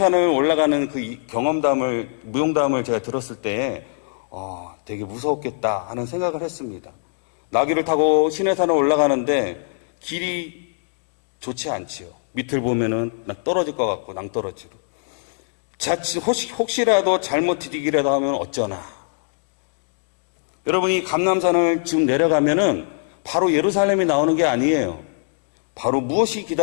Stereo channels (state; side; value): silent; right; digital silence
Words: 올라가는 그 경험담을, 무용담을 제가 들었을 때 되게 무서웠겠다 하는 생각을 했습니다. 나귀를 타고 시내산을 올라가는데 길이 좋지 않지요. 밑을 보면은 떨어질 것 같고 낭떠러지로. 자칫 혹시라도 잘못 디디기라도 하면 어쩌나. 여러분이 감람산을 지금 내려가면은 바로 예루살렘이 나오는 게 아니에요. 바로 무엇이